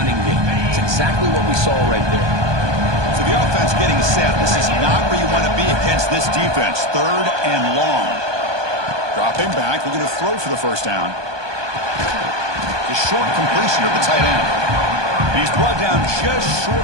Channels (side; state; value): left; late; 1.2 ms